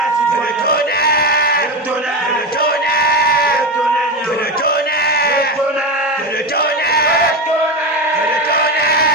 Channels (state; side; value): normal; both; correlation 0.18